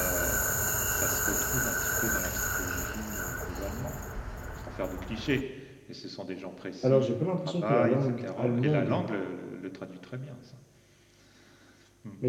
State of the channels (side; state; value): both; identical; correlation 1.00